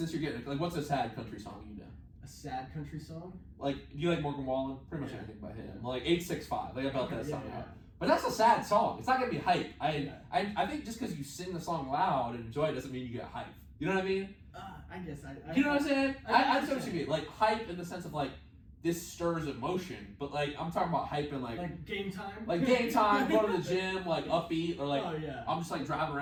you're getting like, what's a sad country song you know? A sad country song? Like, do you like Morgan Wallen? Pretty much anything by him. Like 865. Like I belt that song out. Yeah. But that's a sad song. It's not gonna be hype. I think just because you sing the song loud and enjoy it doesn't mean you get hype. You know what I mean? I guess you know what I'm saying? I understand what you mean. Like hype in the sense of like this stirs emotion, but like I'm talking about hype in like game time. Like game time, going to the gym, like upbeat, or like I'm just like driving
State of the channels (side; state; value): both; identical; correlation 1.00